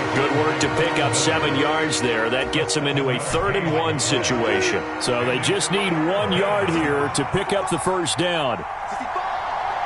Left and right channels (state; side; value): identical; both; correlation 1.00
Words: Good work to pick up 7 yards there. That gets them into a 3rd-and-1 situation. So they just need 1 yard here to pick up the first down.